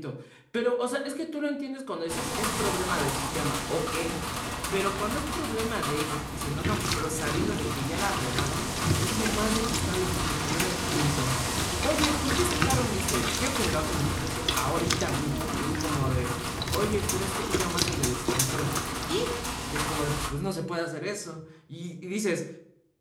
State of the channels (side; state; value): both; identical; correlation 1.00